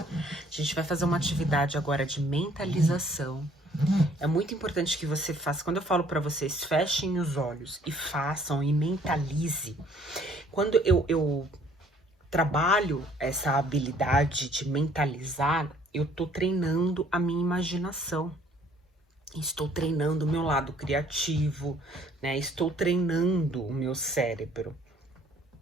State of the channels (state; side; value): normal; both; correlation 0.60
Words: gente vai fazer uma atividade agora de mentalização. É muito importante que você faça. Quando eu falo para vocês, fechem os olhos e façam e mentalize. Quando eu trabalho essa habilidade de mentalizar, eu tô treinando a minha imaginação. Estou treinando o meu lado criativo, né? Estou treinando o meu cérebro.